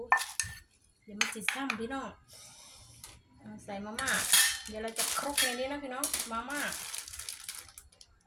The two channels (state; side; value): identical; both; correlation 1.00